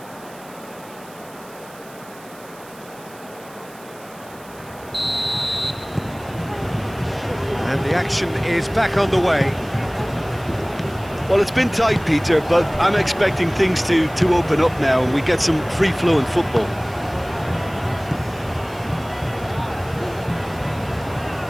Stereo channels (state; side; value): noise; right; hiss, 22 dB below the sound